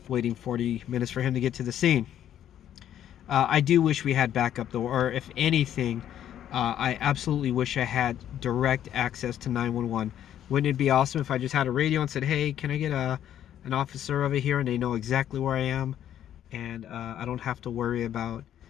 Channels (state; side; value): quieter; right; 10.8 dB